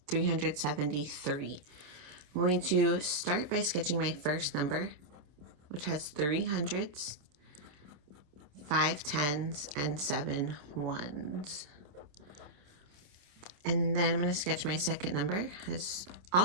373. I'm going to start by sketching my first number, which has 3 hundreds, 5 tens, and 7 ones. And then I'm going to sketch my second number, has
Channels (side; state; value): left; late; 27 ms